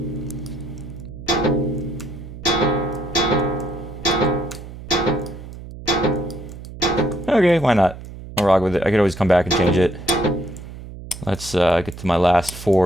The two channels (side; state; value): right; noise; hum, 13 dB below the sound